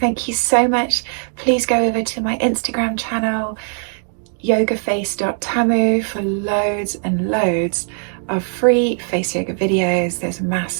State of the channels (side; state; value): left; silent; 56 dB below the other